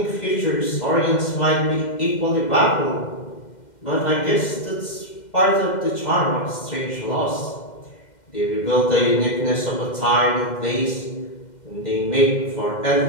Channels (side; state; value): right; late; 2.1 ms